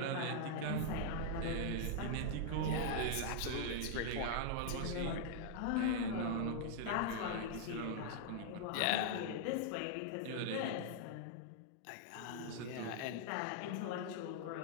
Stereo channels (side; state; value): both; different; correlation -0.01